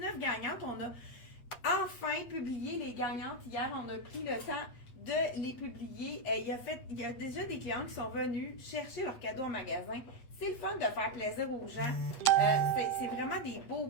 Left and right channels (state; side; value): late; right; 8.2 ms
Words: gagnantes. On a enfin publié les gagnantes hier. On a pris le temps de les publier. Il y a déjà des clients qui sont venus chercher leurs cadeaux en magasin. C'est le fun de faire plaisir aux gens. C'est vraiment des beaux